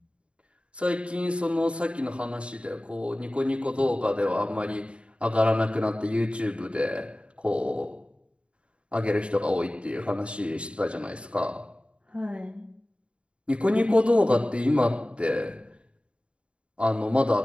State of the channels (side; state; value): left; late; 0.058 ms